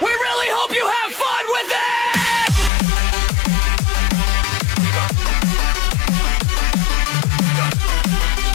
really hope you have fun with it!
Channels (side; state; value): right; drops out; at 2.7 s